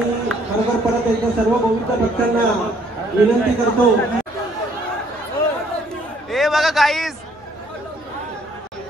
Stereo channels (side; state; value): both; normal; correlation 0.64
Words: खरोखर परत एकदा सर्व गोविंद भक्तांना विनंती करतो. हे बघा गाईस